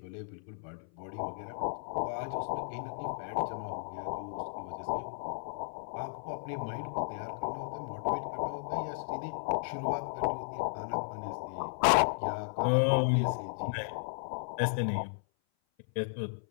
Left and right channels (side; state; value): right; silent; 55 dB below the other